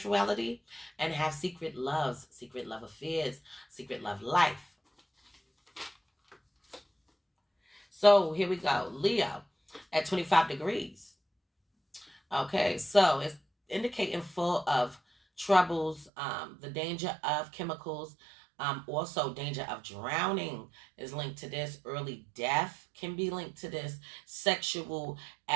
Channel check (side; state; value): left; drops out; at 16.1 s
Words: and have secret loves, secret love affairs, secret love life. So here we go. Leo at 25 degrees. Okay, so it's indicating full of troubles, the danger of chemicals, also danger of drowning is linked to this. Early death can be linked to this. Sexual